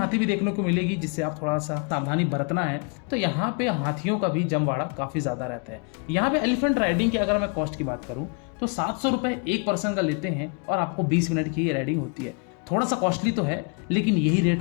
भी देखने को मिलेगी, जिससे आप थोड़ा सा सावधानी बरतना है। तो यहाँ पे हाथियों का भी जमवाड़ा काफी ज्यादा रहता है। यहाँ पे एलिफेंट राइडिंग की अगर मैं कॉस्ट की बात करूँ तो 700 रुपए एक पर्सन का लेते हैं और आपको 20 मिनट की ये राइडिंग होती है। थोड़ा सा कॉस्टली तो है, लेकिन यही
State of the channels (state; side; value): quieter; right; 37.7 dB